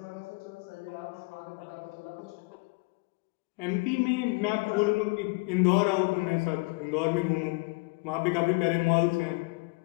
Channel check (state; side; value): quieter; right; 27.8 dB